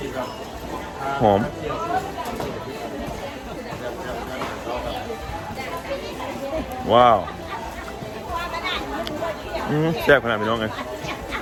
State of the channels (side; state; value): both; identical; correlation 1.00